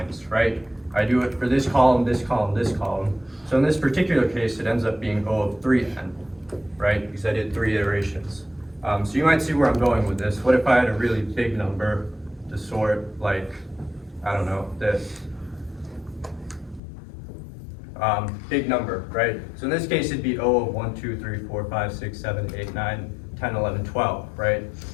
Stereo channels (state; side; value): drops out; right; at 16.8 s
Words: right? I do it for this column, this column, this column. So in this particular case, it ends up being O of 3n, right? Because I did 3 iterations. So you might see where I'm going with this. What if I had a really big number to sort, like, I don't know, this. Big number, right? So in this case, it'd be O of 1, 2, 3, 4, 5, 6, 7, 8, 9, 10, 11, 12, right?